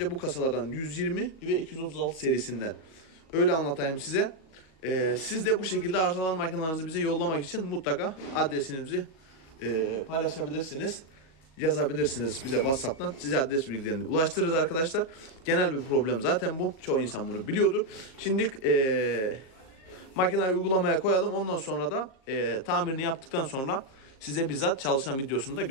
bu kasalardan 120 ve 236 serisinden. Öyle anlatayım size. Siz de bu şekilde arızalı makinelerinizi bize yollamak için mutlaka adresinizi paylaşabilirsiniz. Yazabilirsiniz bize WhatsApp'tan. Size adres bilgilerini ulaştırırız arkadaşlar. Genel bir problem zaten bu. Çoğu insan bunu biliyordur. Şimdi makineyi uygulamaya koyalım. Ondan sonra da tamirini yaptıktan sonra size bizzat çalışan videosunu da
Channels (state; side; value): late; right; 37 ms